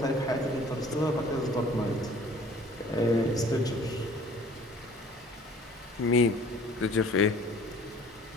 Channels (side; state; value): both; normal; correlation 0.51